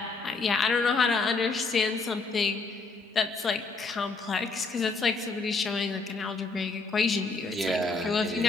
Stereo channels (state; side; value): quieter; right; 4.0 dB